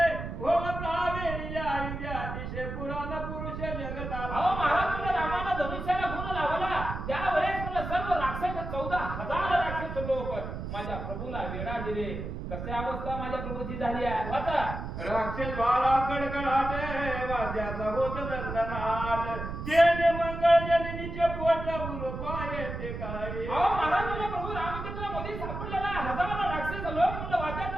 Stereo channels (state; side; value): noise; right; rumble, 6 dB below the sound